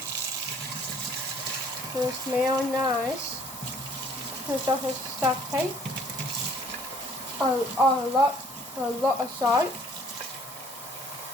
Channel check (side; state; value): both; normal; correlation 0.58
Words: Will smell nice. It's also stuffy. A lot of salt.